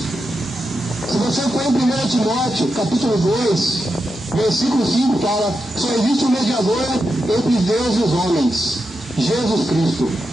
Se você for em 1 Timóteo, capítulo 2, versículo 5, fala: só existe um mediador entre Deus e os homens, Jesus Cristo.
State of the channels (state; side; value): normal; both; correlation 0.87